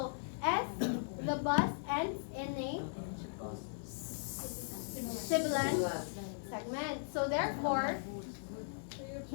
S, the bus ends in a sibilant segment. So therefore,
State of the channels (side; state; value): right; silent; digital silence